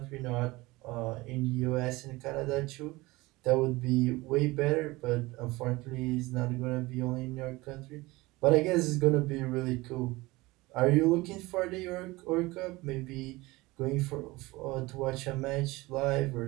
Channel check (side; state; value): left; quieter; 21.3 dB